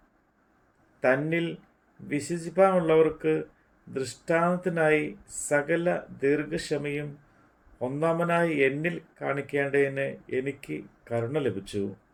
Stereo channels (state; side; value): identical; both; correlation 1.00